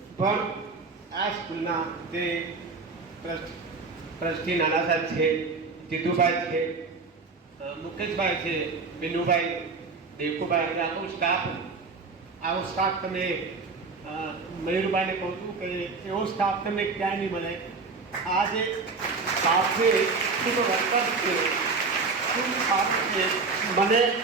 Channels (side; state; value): left; quieter; 4.3 dB